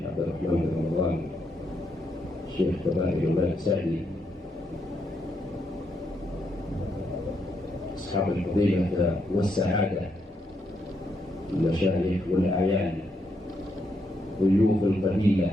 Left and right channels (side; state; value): both; normal; correlation 0.79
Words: عبد الرحمن بن رمضان، الشيخ كبائر الملك سعدي، أصحاب الفضيلة والسعادة، المشايخ والأعيان، ضيوف القبيلة،